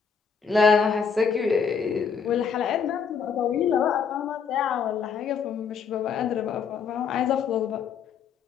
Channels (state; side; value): quieter; right; 6.3 dB